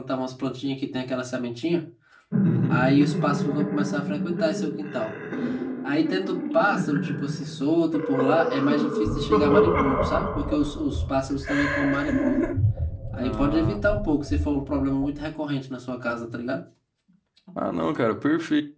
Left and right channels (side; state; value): both; identical; correlation 1.00